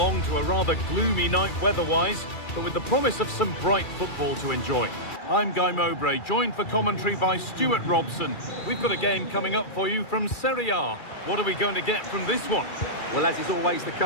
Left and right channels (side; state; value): right; late; 2.3 ms